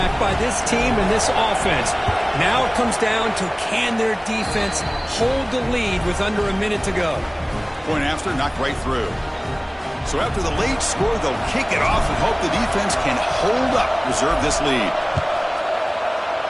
by this team and this offense. Now it comes down to can their defense hold the lead with under a minute to go. Point after, knocked right through. So after the late score, they'll kick it off and hope the defense can hold up, reserve this lead.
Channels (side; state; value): both; identical; correlation 1.00